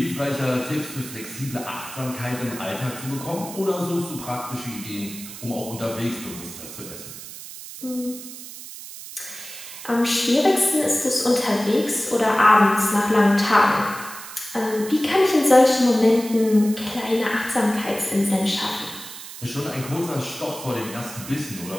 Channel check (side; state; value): right; noise; hiss, 13 dB below the sound